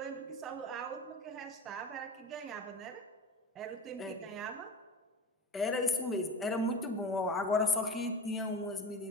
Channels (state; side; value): normal; both; correlation 0.31